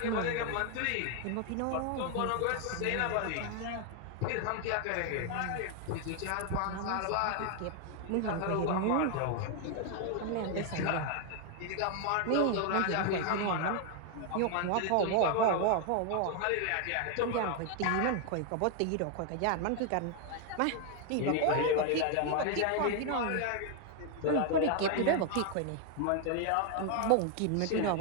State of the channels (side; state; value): both; different; correlation 0.00